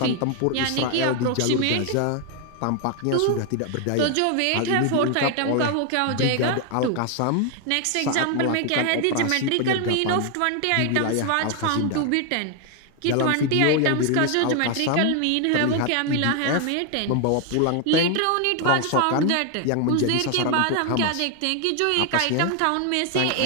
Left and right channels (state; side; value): different; both; correlation 0.01